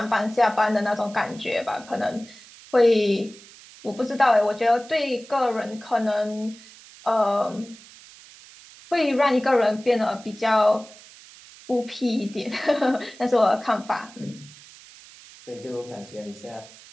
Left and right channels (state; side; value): noise; right; hiss, 21 dB below the sound